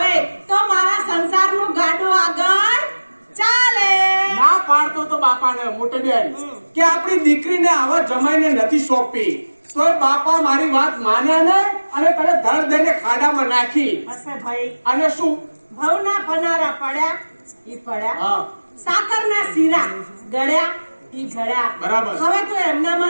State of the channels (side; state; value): both; inverted; correlation -1.00